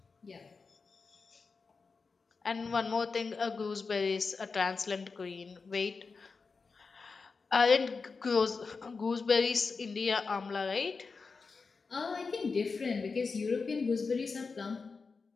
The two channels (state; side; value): quieter; right; 4.6 dB